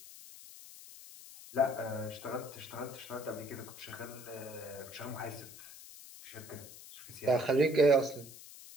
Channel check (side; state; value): left; noise; hiss, 16 dB below the sound